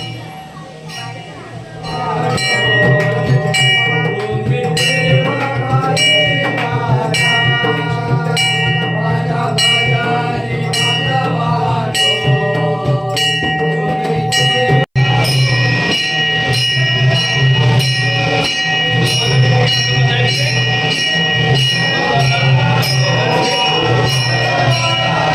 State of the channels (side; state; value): both; identical; correlation 1.00